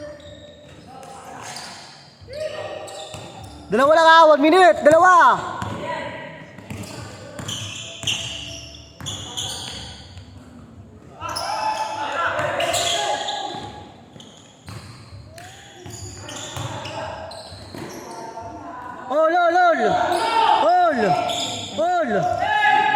Dalawa lang ha, 1 minute, 2. Ol.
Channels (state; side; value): identical; both; correlation 1.00